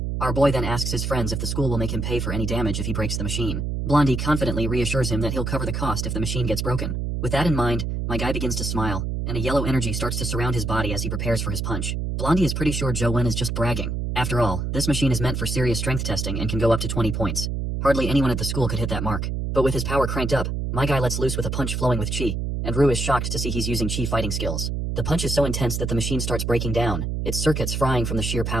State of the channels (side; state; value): right; noise; hum, 2 dB below the sound